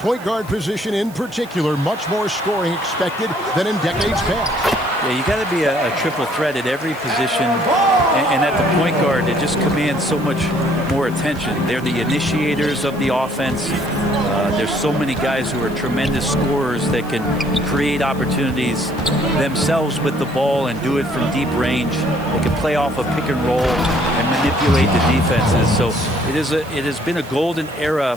guard position in particular, much more scoring expected than in decades past. Yeah, you got to be a triple threat at every position, and at the point guard, it just commands so much more attention. They're the initiators of the offense. There's so many guys who are tremendous scorers that can create opportunities themselves with the ball and do it from deep range. They can play off a pick and roll and manipulate the defenses. So it has been a golden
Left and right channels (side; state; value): right; noise; hiss, 22 dB below the sound